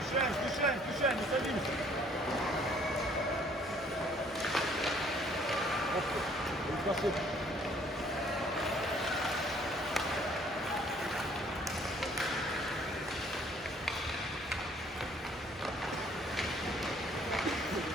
Мешаем, не садимся. Оп, красота.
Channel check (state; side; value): normal; both; correlation 0.60